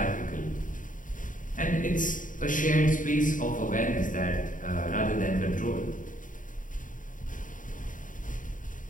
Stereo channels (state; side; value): late; right; 0.38 ms